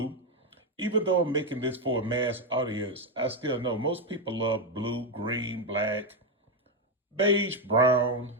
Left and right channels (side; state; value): both; normal; correlation 0.06